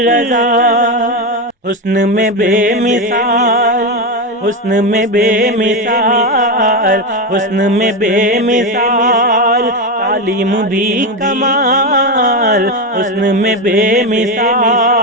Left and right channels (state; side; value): normal; both; correlation 0.13